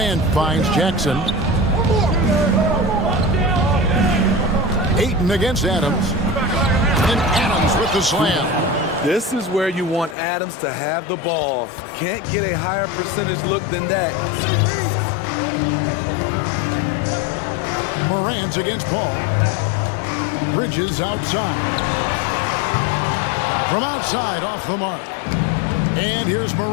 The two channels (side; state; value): right; drops out; at 10.2 s